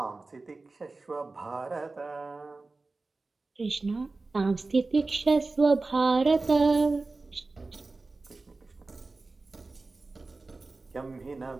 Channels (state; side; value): quieter; left; 3.5 dB